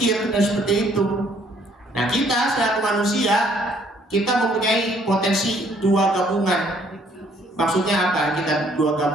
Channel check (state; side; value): normal; both; correlation 0.63